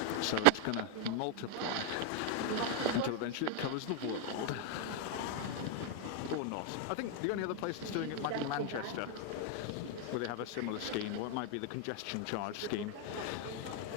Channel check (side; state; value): both; different; correlation 0.00